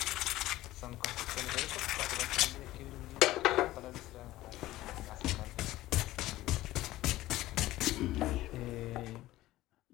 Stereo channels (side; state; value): right; quieter; 16.2 dB